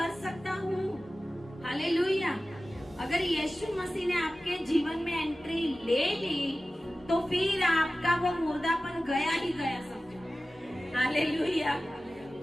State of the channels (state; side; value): normal; both; correlation 0.96